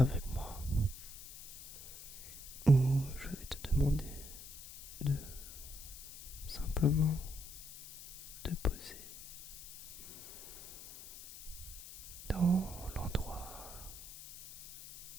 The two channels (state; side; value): noise; left; hiss, 14 dB below the sound